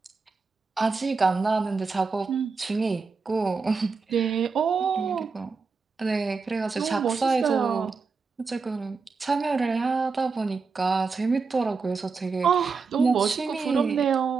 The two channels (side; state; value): left; quieter; 4.7 dB